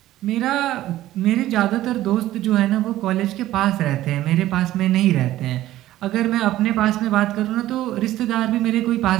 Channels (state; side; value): quieter; left; 14.6 dB